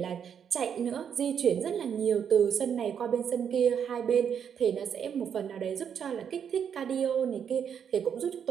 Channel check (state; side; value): quieter; left; 7.9 dB